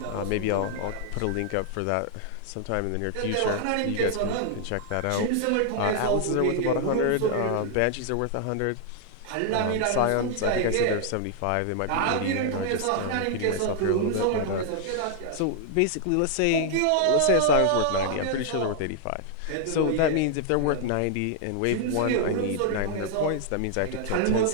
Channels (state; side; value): different; both; correlation 0.00